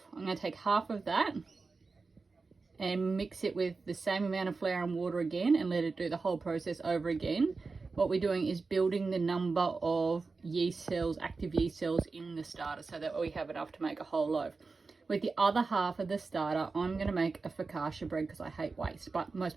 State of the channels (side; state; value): left; quieter; 4.2 dB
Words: I'm going to take half of that and mix it with the same amount of flour and water again and let it do the whole process over again. What we're doing is building the number of yeast cells, active yeast cells in the starter, so that we have enough to make a whole loaf. With the other half of the starter, I'm going to make a focaccia bread because I hate waste, but most